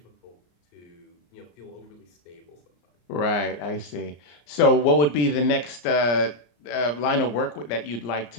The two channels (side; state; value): right; late; 34 ms